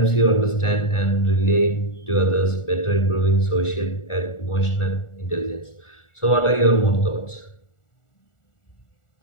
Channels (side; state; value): right; late; 1.4 ms